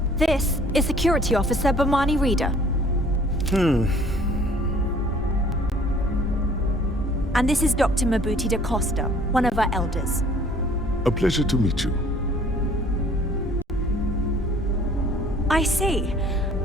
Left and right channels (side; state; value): both; normal; correlation 0.55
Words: This is Security Officer Bomani Reader. And this is Dr. Mabuti da Costa, one of our elders. A pleasure to meet you. I see.